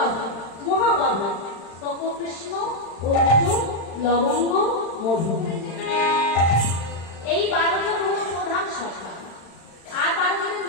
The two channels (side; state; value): right; late; 36 ms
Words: মহাবাধা তপকৃষ্ণ অর্জুন লবঙ্গ মধু। এই 12 জন হল প্রধান সখা। আর 12 জনের